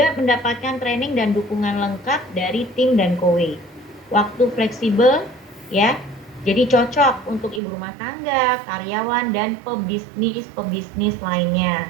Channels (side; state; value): left; drops out; at 7.6 s